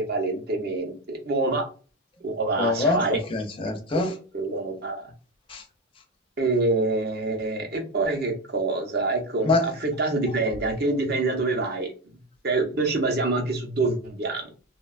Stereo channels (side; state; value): both; normal; correlation 0.16